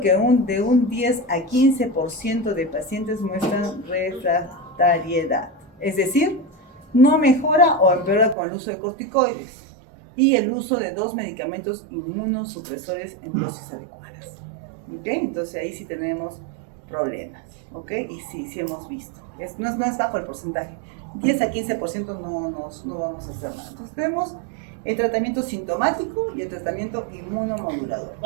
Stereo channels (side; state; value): left; drops out; at 8.3 s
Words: de un 10 a 15% de pacientes muestran refractariedad, es decir, no mejora o empeora con el uso de corticoides y el uso de 2 medicamentos inmunosupresores en dosis adecuadas. ¿Ok? Entonces ahí sí tenemos problemas, ¿ok? Y sí hemos visto. No es bajo el porcentaje. 10 a 15% no vamos a hacer nada. Entonces tenemos el tratamiento sintomático y el tratamiento inmunomodulador.